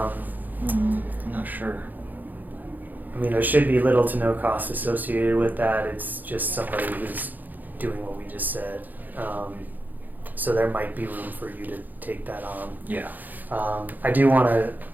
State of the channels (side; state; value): left; late; 0.084 ms